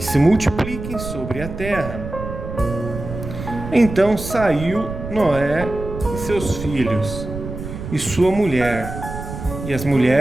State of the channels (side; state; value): right; noise; rumble, 9 dB below the sound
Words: se multipliquem sobre a terra. Então saiu Noé e seus filhos, e sua mulher, e as